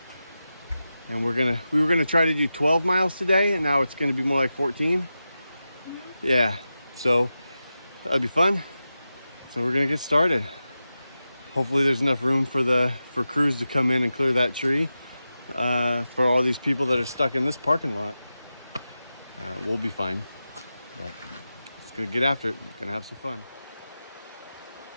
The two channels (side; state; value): both; inverted; correlation -0.92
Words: and we were gonna try to do 12 miles today, and now it's gonna be more like 14. Yeah, so that'll be fun. So we're gonna get started. Hopefully there's enough room for crews to come in and clear that tree for all these people that are stuck in this parking lot. We'll be fine, but just gonna get after it. Gonna have some fun.